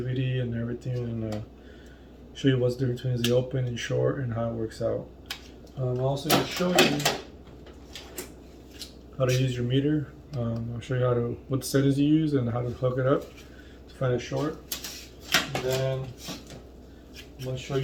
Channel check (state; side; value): identical; both; correlation 1.00